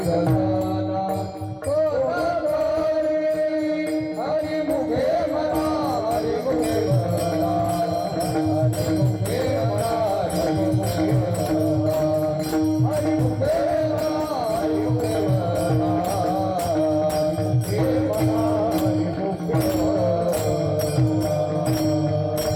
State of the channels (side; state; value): both; identical; correlation 1.00